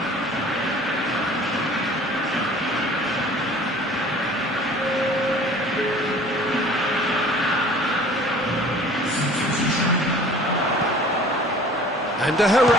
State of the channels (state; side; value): normal; both; correlation 0.48